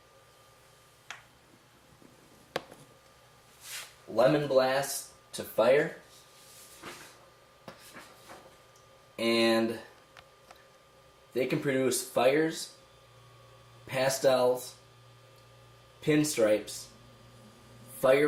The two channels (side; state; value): both; identical; correlation 1.00